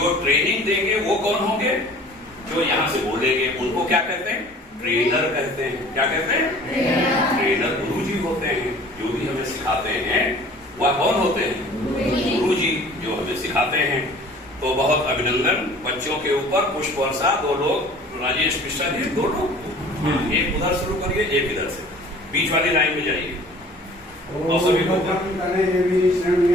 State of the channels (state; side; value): normal; both; correlation 0.48